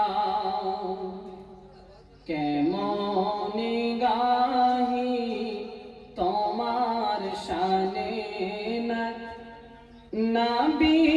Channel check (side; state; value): both; identical; correlation 1.00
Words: কেমন গাহি তোমার শানে না নবী